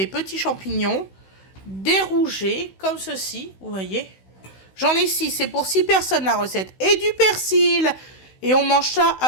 petits champignons, des rougets, comme ceci, vous voyez. J'en ai 6, c'est pour 6 personnes la recette, et du persil, et on mange ça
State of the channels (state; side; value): late; right; 16 ms